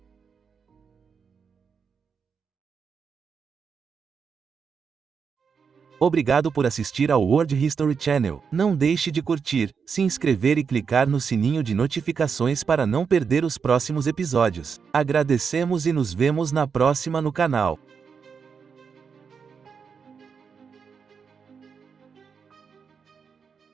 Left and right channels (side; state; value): left; quieter; 6.1 dB